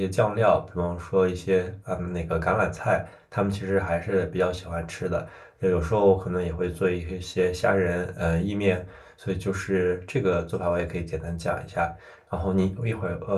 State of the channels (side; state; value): both; identical; correlation 1.00